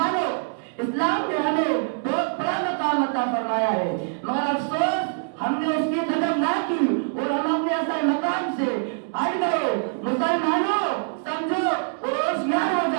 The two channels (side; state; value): left; silent; digital silence